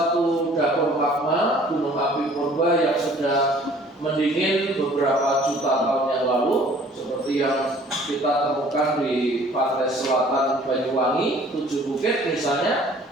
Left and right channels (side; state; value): both; normal; correlation 0.53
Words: dapur magma gunung api purba yang sudah mendingin beberapa juta tahun yang lalu, seperti yang kita temukan di pantai selatan Banyuwangi, 7 Bukit misalnya.